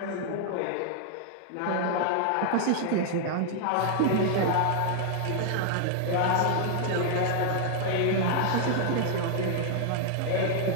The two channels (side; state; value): both; different; correlation 0.00